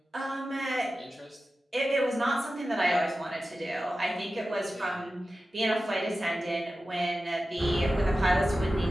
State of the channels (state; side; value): normal; both; correlation 0.94